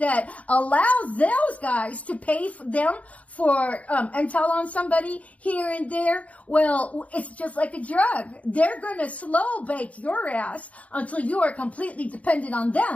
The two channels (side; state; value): right; late; 0.067 ms